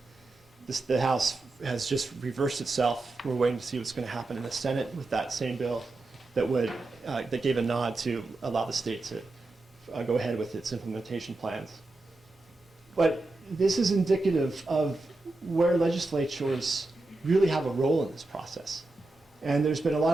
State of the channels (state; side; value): quieter; left; 3.1 dB